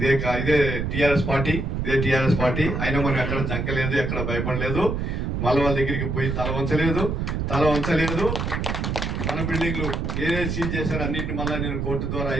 ఇదే టీఆర్ఎస్ పార్టీ. అయినా మనం ఎక్కడ జంకలేదు, ఎక్కడ భయపడలేదు, మళ్ళీ వాళ్ళ దగ్గరికి పోయి తల వంచలేదు. మన బిల్డింగ్లు ఏదైతే సీజ్ చేశారో అన్నింటిని మళ్ళీ నేను కోర్టు ద్వారా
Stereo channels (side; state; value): right; noise; rumble, 1 dB below the sound